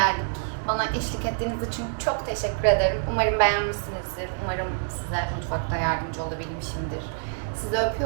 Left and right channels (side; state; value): left; silent; digital silence